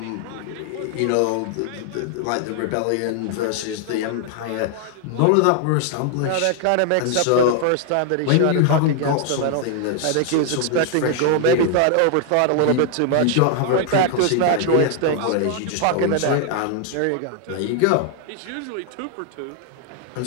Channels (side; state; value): both; different; correlation 0.00